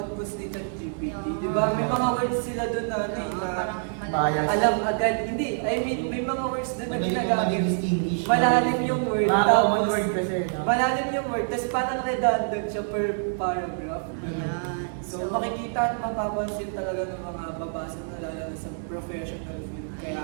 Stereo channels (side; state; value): left; silent; digital silence